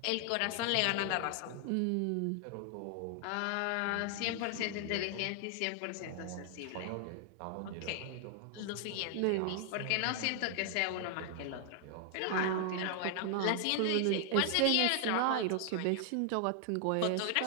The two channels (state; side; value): different; both; correlation 0.00